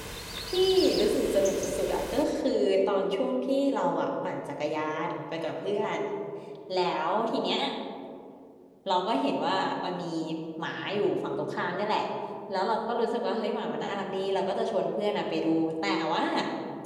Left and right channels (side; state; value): both; identical; correlation 1.00